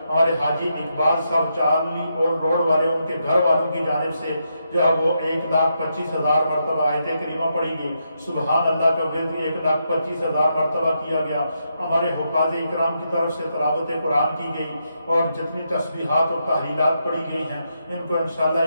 ہمارے حاجی اقبال صاحب چارلی اور روڈ والے ان کے گھر والوں کی جانب سے جو ہے وہ 1,25,000 مرتبہ آیت کریمہ پڑھی گئی۔ سبحان اللہ کا ورد 1,25,000 مرتبہ کیا گیا۔ ہمارے حفاظ اکرام کی طرف سے تلاوت قرآن کی گئی، اور جتنی تسبیحات اور تحلیلات پڑھی گئی ہیں ان کو انشاءاللہ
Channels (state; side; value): inverted; both; correlation -0.82